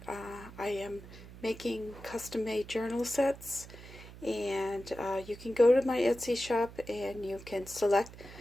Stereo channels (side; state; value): right; noise; hum, 16 dB below the sound